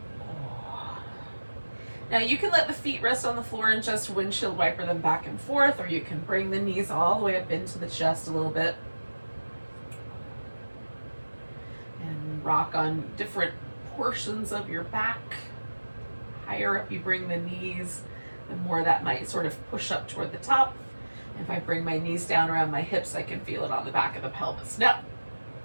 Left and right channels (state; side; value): inverted; both; correlation -1.00